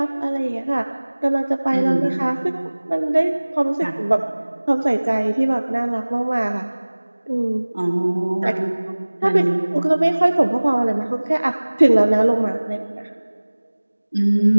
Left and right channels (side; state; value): both; inverted; correlation -1.00